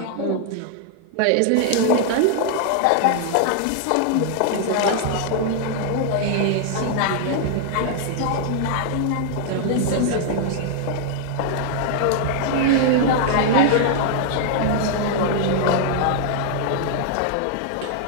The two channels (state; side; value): different; both; correlation 0.00